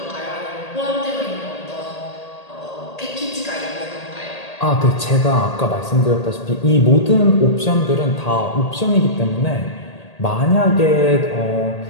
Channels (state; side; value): late; right; 1.8 ms